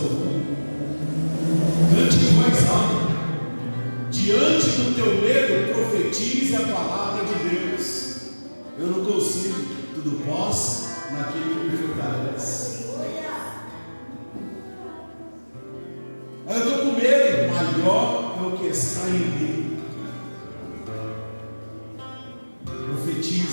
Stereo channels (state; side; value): inverted; both; correlation -1.00